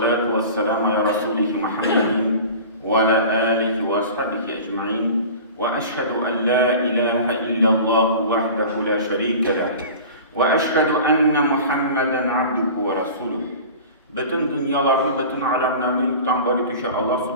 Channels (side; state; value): both; inverted; correlation -0.38